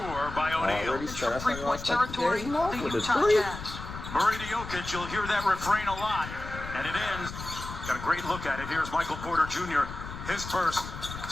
by O'Neal. From three-point territory, the Utah Jazz. Murray to Jokic, you'll hear that refrain a lot. And it ends. Got a great look at it. Here's Michael Porter Jr., his first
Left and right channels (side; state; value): left; noise; rumble, 10 dB below the sound